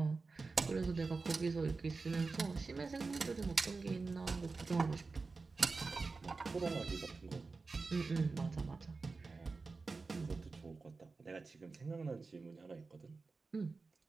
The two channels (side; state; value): left; quieter; 4.1 dB